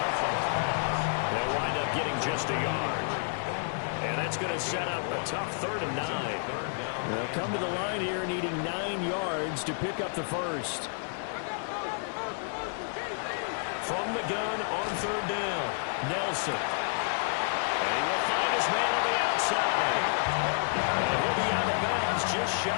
They'll wind up getting just a yard. And that's going to set up a tough 3rd and 9. They'll come to the line here needing 9 yards to pick up the first. From the gun on 3rd down, Nelson. And he will find his man on the outside. And he'll be out of bounds just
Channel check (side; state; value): right; silent; digital silence